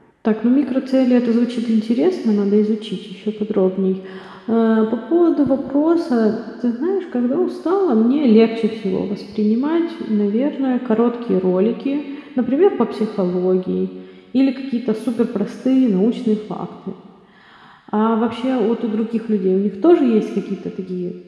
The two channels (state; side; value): identical; both; correlation 1.00